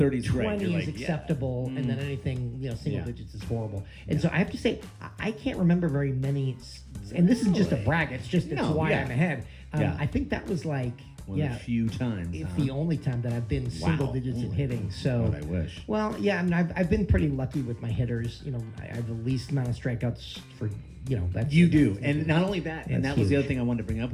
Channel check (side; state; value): both; identical; correlation 1.00